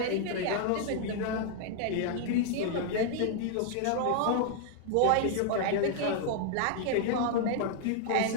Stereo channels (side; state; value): both; different; correlation 0.00